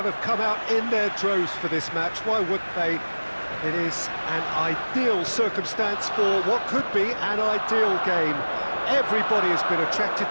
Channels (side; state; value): both; inverted; correlation -1.00